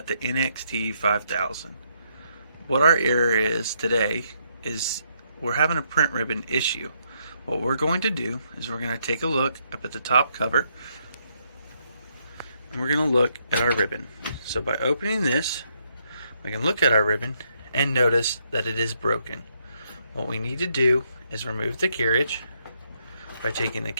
the NXT5000. What our error is today is we're having a print ribbon issue. What we're going to do is we're going to take a look up at the top cover and we're going to look at our ribbon. So by opening this, we can look at our ribbon and notice that it is broken. What we need to do is remove the carriage. By taking the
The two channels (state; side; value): inverted; both; correlation -0.75